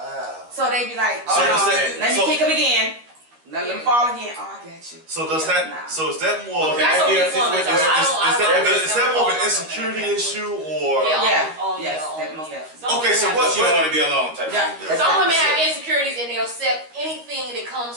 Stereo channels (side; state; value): left; late; 13 ms